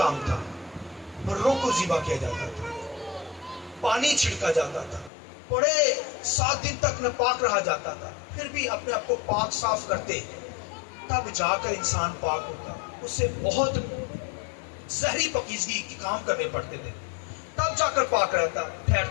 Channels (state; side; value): drops out; right; at 5.1 s